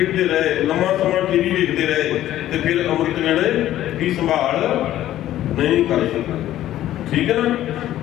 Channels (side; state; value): right; quieter; 13.2 dB